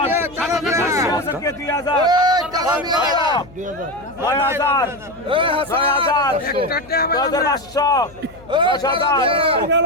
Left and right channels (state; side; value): noise; left; hum, 23 dB below the sound